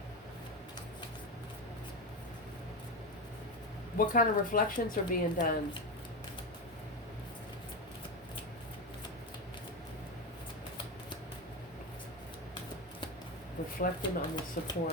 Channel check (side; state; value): both; normal; correlation 0.17